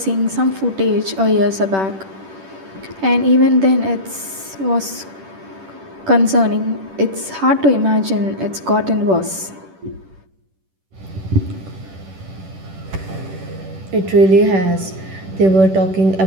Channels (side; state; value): left; late; 10 ms